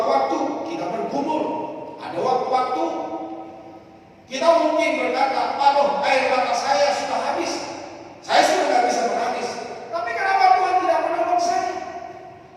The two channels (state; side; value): identical; both; correlation 1.00